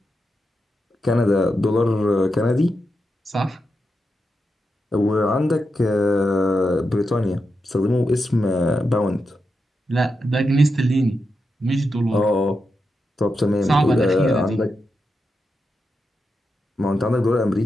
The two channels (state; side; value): normal; both; correlation 0.87